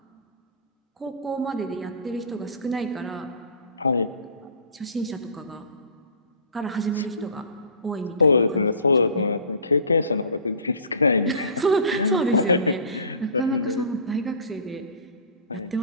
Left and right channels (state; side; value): inverted; both; correlation -0.38